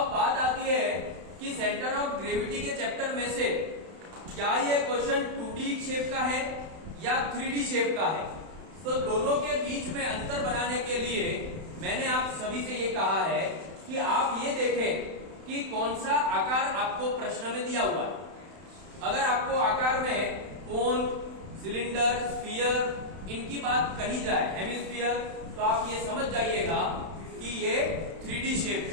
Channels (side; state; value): left; late; 31 ms